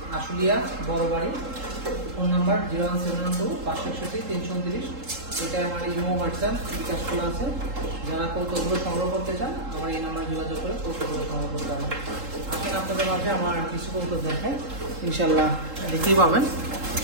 আশুলিয়া বড় বাড়ি, ফোন নাম্বার 01712-561-329। এটা আমার ইমো হোয়াটসঅ্যাপ বিকাশ খোলা আছে। যারা কৌতুকগুলো সংগ্রহ করতে চান আমার এই নাম্বারে যোগাযোগ করে কৌতুকগুলো সংগ্রহ করতে হবে। আসেন আপনাদের মাঝে আমার কিছু কৌতুক দেখায়, ইনশাল্লাহ দেখতেই পাবেন।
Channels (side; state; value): left; late; 3.7 ms